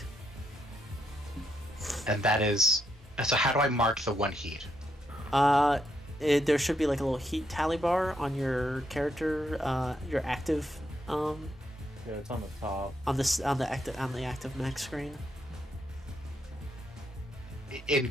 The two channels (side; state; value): both; normal; correlation 0.79